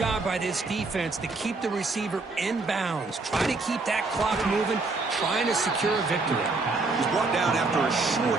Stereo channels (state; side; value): quieter; left; 3.6 dB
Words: by this defense to keep the receiver in bounds. Try to keep that clock moving, trying to secure a victory. He's brought down after a short